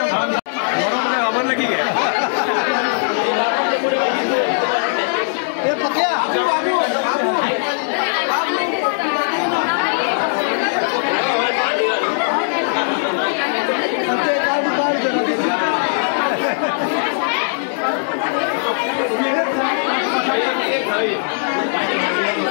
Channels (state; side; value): silent; right; 67 dB below the other